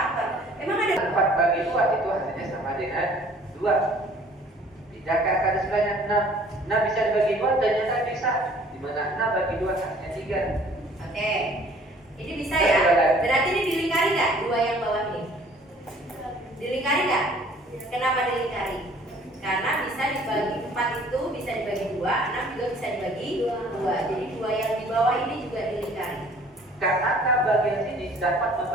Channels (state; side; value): normal; both; correlation 0.54